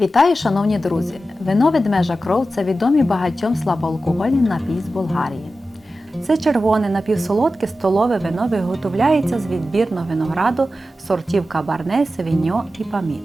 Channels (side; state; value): both; normal; correlation 0.93